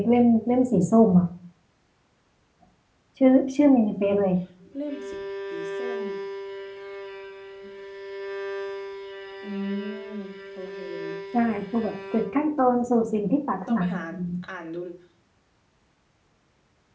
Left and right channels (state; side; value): identical; both; correlation 1.00